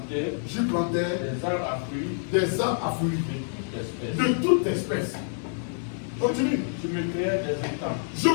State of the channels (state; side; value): silent; right; digital silence